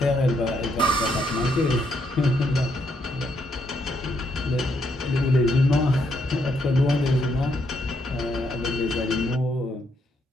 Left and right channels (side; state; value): both; normal; correlation 0.75